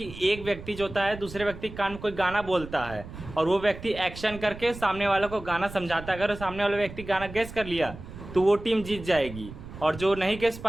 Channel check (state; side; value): noise; right; rumble, 13 dB below the sound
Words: एक व्यक्ति जो होता है दूसरे व्यक्ति के कान में कोई गाना बोलता है और वो व्यक्ति एक्शन करके सामने वाले को गाना समझाता है। अगर सामने वाले व्यक्ति गाना गेस कर लिया तो वो टीम जीत जाएगी और जो नहीं गेस